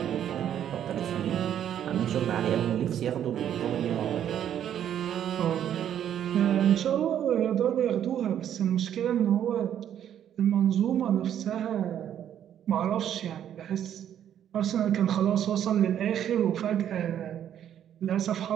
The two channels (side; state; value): left; quieter; 10.1 dB